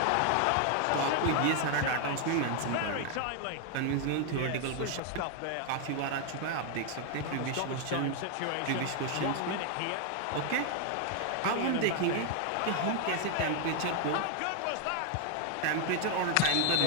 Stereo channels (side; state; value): both; different; correlation 0.00